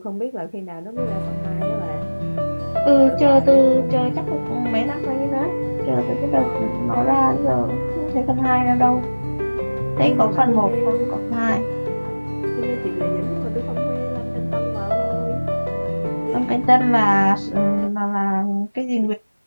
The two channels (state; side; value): inverted; both; correlation -1.00